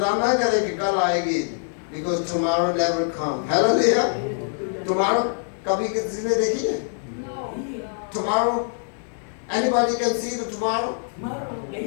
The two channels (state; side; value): silent; right; digital silence